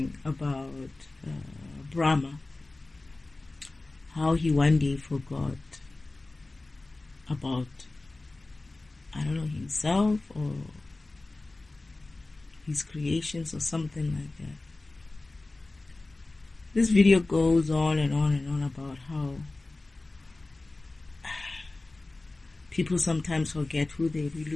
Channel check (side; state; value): right; quieter; 3.1 dB